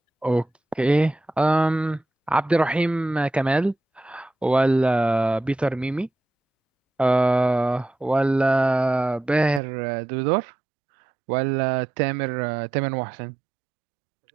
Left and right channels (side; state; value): left; drops out; at 9.6 s